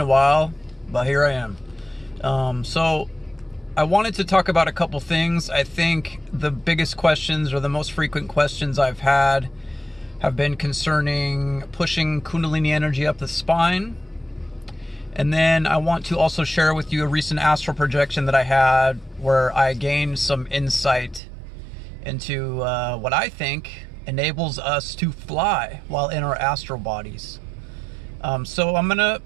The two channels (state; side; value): drops out; left; at 21.2 s